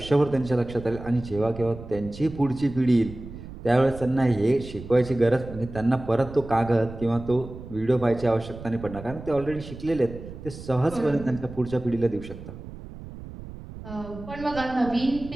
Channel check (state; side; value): noise; right; rumble, 13 dB below the sound